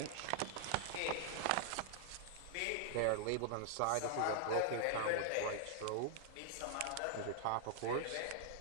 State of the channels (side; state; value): both; different; correlation -0.01